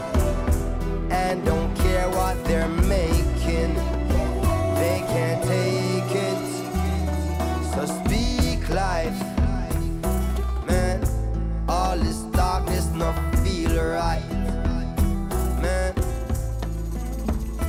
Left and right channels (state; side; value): identical; both; correlation 1.00